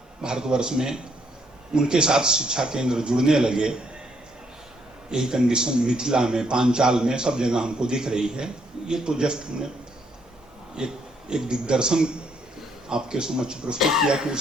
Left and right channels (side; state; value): both; normal; correlation 0.72